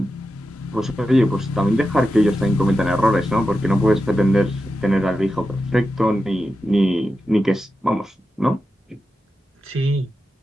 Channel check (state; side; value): normal; both; correlation 0.90